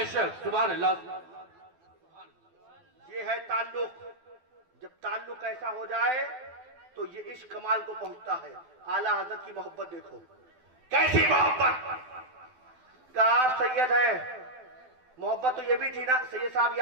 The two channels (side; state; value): left; late; 12 ms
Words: सुभान अल्लाह। ये है ताल्लुक। जब ताल्लुक ऐसा हो जाए तो ये इश्क कमाल को पहुंचता है। आला हजरत की मोहब्बत देखो, कैसी मोहब्बत। का आप सैयद है, मोहब्बत तो ये भी थी ना, सैयद साहब ये